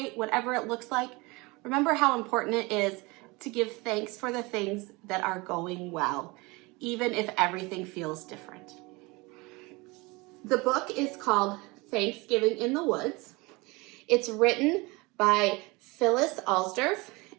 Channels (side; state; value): left; quieter; 24.7 dB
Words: whatever it looks like, remember how important it is to give thanks for the things that are going well, even if everything feels different. The book is called Thanksgiving in the Woods. It's written by Phyllis Alsdorf